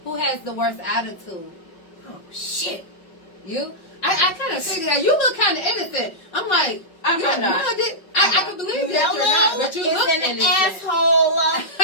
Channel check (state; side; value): late; right; 5.3 ms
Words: Who has the worst attitude? Oh, shit. You? I kind of figured out. You look kind of innocent. I'm like, I'm not. I can believe that you're not, but you look is an innocent. asshole.